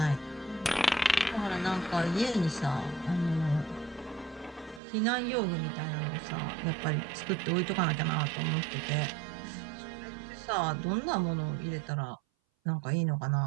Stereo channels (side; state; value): left; drops out; at 4.8 s